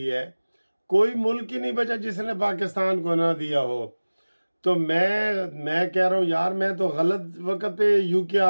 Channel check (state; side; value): inverted; both; correlation -1.00